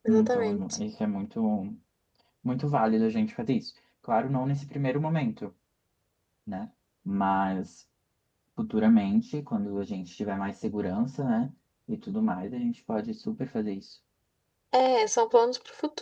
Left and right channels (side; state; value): both; identical; correlation 1.00